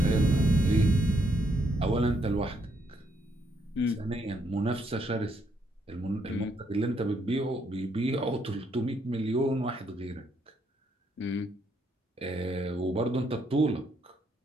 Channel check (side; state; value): both; normal; correlation 0.74